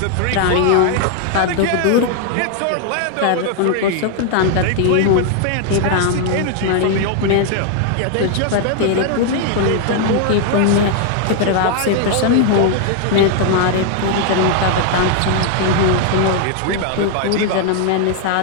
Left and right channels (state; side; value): different; both; correlation 0.00